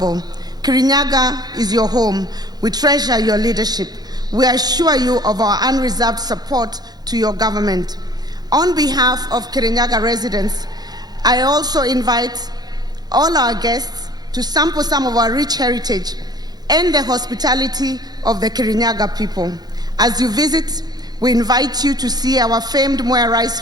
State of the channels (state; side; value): late; left; 0.19 ms